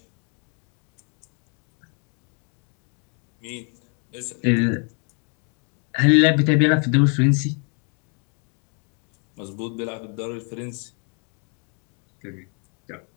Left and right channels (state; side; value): quieter; right; 38.0 dB